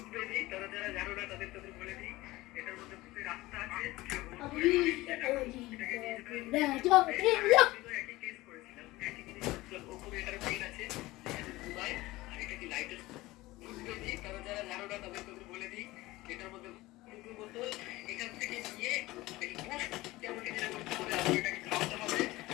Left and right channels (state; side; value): quieter; right; 19.1 dB